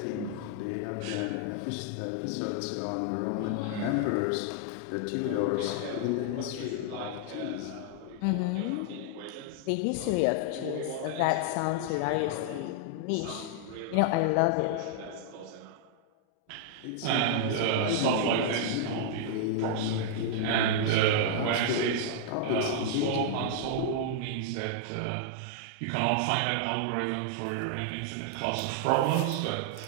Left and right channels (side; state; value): both; different; correlation -0.01